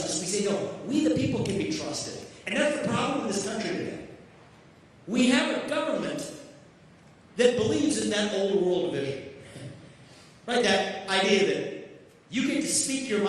We say, no, we, the people, can be trusted. And that's the problem in this country today. We have a government that believes in that old world vision. Right? That idea that you get to speak your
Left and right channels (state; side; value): identical; both; correlation 1.00